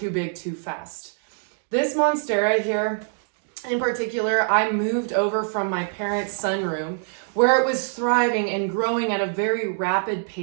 big too fast. This Monstera here, in particular, I moved over from my parents' sunroom where it was thriving and growing at a very rapid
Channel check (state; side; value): silent; left; digital silence